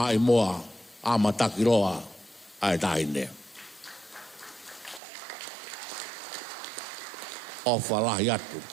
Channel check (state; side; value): drops out; left; at 5.0 s